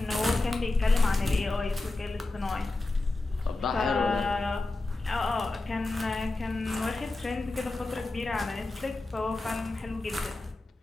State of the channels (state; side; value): quieter; right; 3.1 dB